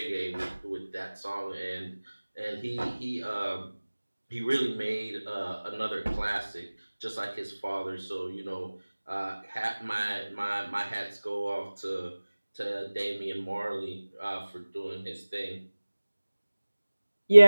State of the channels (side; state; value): both; inverted; correlation -1.00